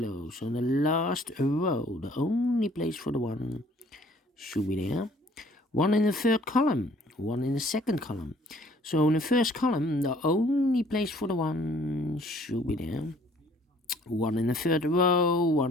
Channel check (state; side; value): normal; both; correlation 0.57